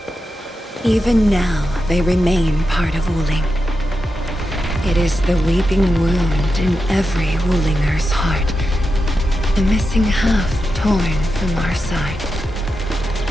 Even now, they remain part of Wuling. It is the weeping wound in every Wulinger's heart. The missing half torn from our side.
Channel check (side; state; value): both; normal; correlation 0.89